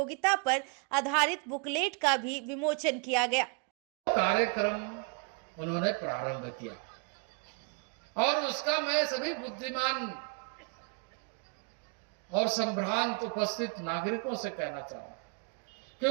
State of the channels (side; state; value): left; quieter; 37.4 dB